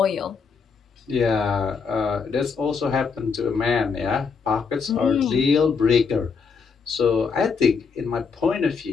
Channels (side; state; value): right; quieter; 5.5 dB